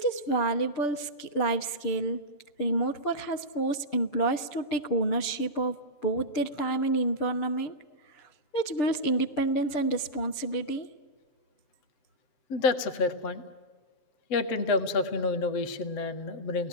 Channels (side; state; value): right; late; 6.8 ms